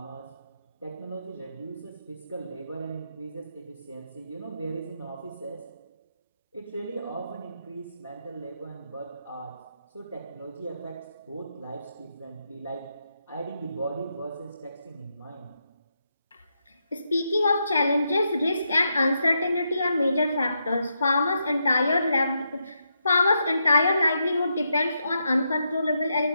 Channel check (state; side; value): inverted; both; correlation -0.82